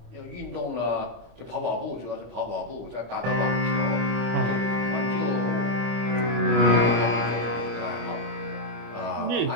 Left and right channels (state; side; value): late; left; 25 ms